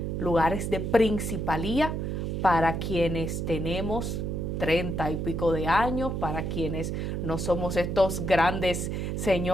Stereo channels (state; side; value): noise; right; hum, 2 dB below the sound